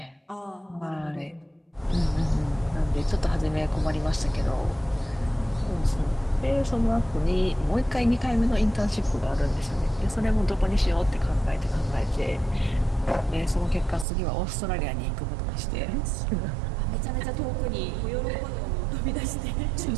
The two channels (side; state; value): left; drops out; at 14.1 s